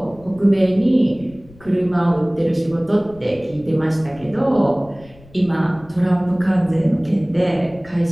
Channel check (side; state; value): left; noise; rumble, 23 dB below the sound